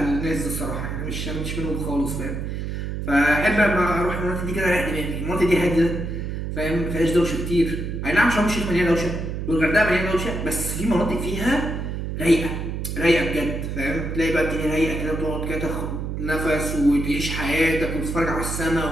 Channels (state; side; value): noise; right; hum, 4 dB below the sound